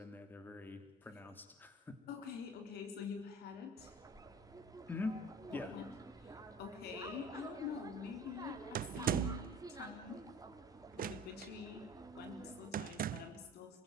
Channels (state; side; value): normal; both; correlation 0.43